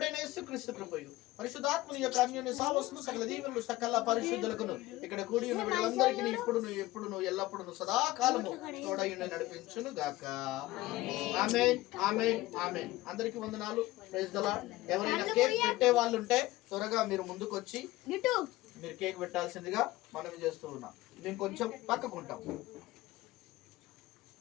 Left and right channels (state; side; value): quieter; right; 17.8 dB